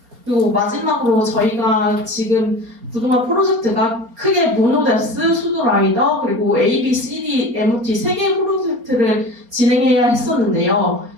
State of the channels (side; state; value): left; late; 4.3 ms